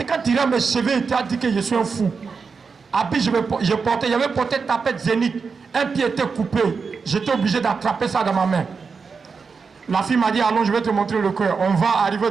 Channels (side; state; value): left; quieter; 5.2 dB